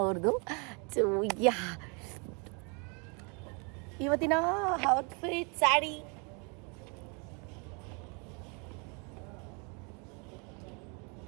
ಅವ್ರದ್ದು. ಸೊ ಇವತ್ತಿನ ಔಟ್ಫಿಟ್ ಸ್ಯಾರಿ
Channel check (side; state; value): left; quieter; 34.0 dB